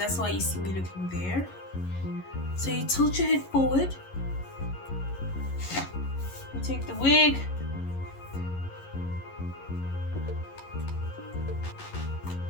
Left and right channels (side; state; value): right; late; 11 ms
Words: why you see me looking there. So you tilt your head forward, you take the wig,